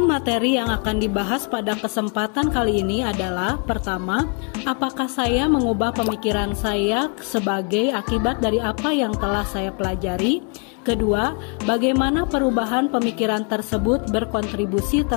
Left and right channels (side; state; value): right; quieter; 37.9 dB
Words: materi yang akan dibahas pada kesempatan kali ini adalah: pertama, apakah saya mengubah pemikiran saya sebagai akibat dari apa yang telah saya pelajari? Kedua, bagaimana perubahan pemikiran tersebut berkontribusi